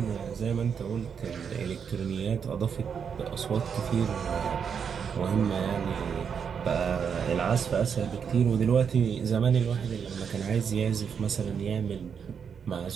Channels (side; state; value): left; quieter; 7.0 dB